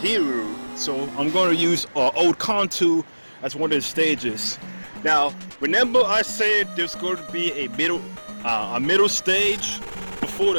So I'm going to use Old Kanto as one of the stages. Now, remember I said there's going to be a middle stage before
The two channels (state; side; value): inverted; both; correlation -1.00